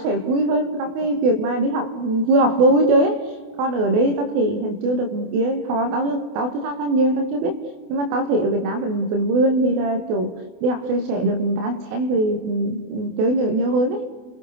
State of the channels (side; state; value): left; late; 28 ms